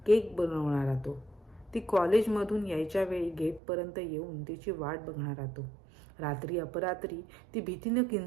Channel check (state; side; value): drops out; left; at 3.6 s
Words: केक बनवणारा तो, ती कॉलेजमधून यायच्या वेळी गेटपर्यंत येऊन तिची वाट बघणारा तो, रात्री अपरात्री ती भीतीनं